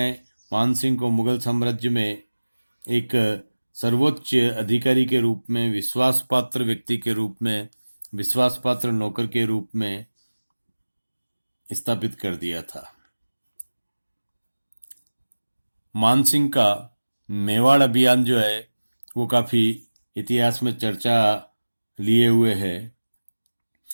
मानसिंह को मुगल साम्राज्य में एक सर्वोच्च अधिकारी के रूप में, विश्वासपात्र व्यक्ति के रूप में, विश्वासपात्र नौकर के रूप में स्थापित कर दिया था। मानसिंह का मेवाड़ अभियान जो है वो काफी इतिहास में चर्चा लिए हुए है।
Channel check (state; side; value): inverted; both; correlation -1.00